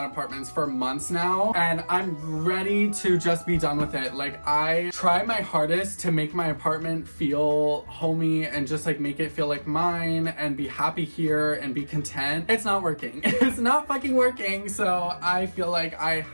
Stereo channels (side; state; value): both; inverted; correlation -1.00